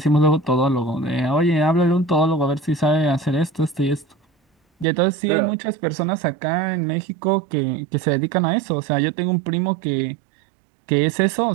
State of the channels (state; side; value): drops out; left; at 4.9 s